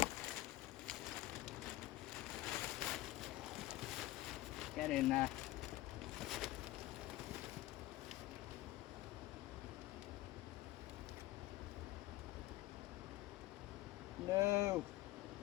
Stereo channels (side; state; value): right; quieter; 17.1 dB